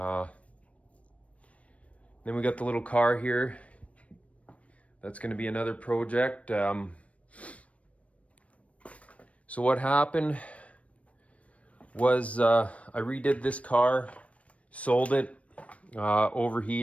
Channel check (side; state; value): right; late; 0.064 ms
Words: we got the little car here. That's going to be another project. So what happened was I redid this car, sold it,